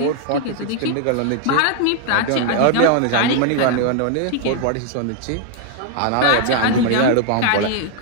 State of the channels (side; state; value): both; different; correlation 0.00